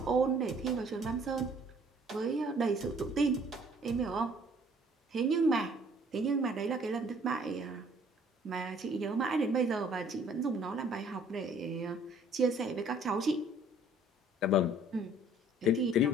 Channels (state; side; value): normal; both; correlation 0.58